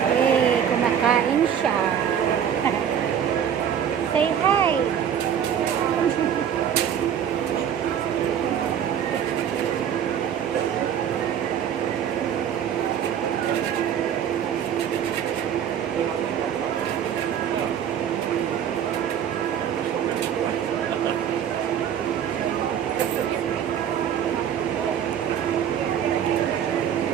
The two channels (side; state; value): left; quieter; 8.9 dB